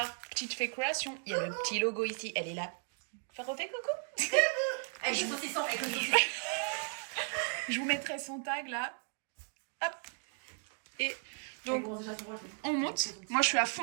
Petite Fée Création. Il y a le petit logo ici. Elle est là. Refais coucou. Avec le saucisson, Je vous mettrai son tag là. Hop. Et donc, on monte. Moi, je suis à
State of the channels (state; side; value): silent; left; 54 dB below the other